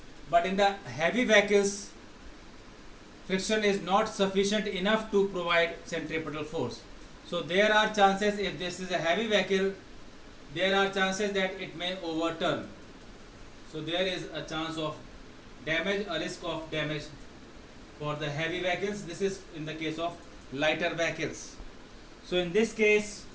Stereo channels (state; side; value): identical; both; correlation 1.00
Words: but in the heavy vehicles, friction is not sufficient enough to provide centripetal force. So there are chances, if this is a heavy vehicle, there are chances that it may overturn. So there is a chance of damage, a risk of damage for the heavy vehicles. This is in the case of lighter vehicles. So in this case,